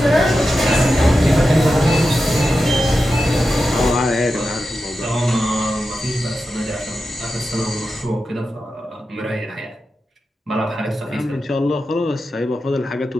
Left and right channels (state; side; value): normal; both; correlation 0.91